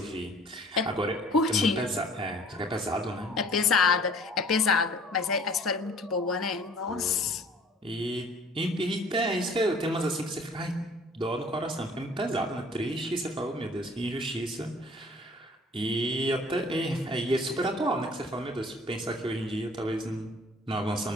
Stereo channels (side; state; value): both; normal; correlation 0.52